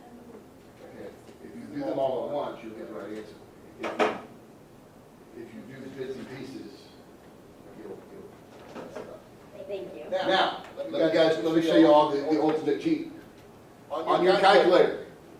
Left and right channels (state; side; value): identical; both; correlation 1.00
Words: Okay, if you do them all at once, you'll get the right answer. If you do bits and pieces, you'll mess it up. Thank you. Now, let me show you all the ultimate cheat. On your calculator,